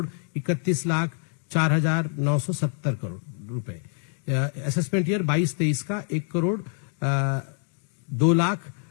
31,04,970 करोड़ रुपए। असेसमेंट ईयर 22-23 का 1 करोड़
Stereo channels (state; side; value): silent; right; 61 dB below the other